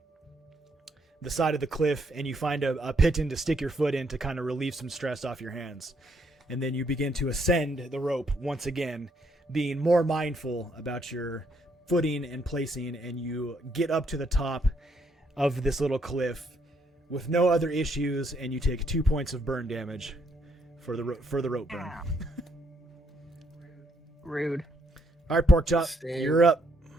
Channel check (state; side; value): normal; both; correlation 0.72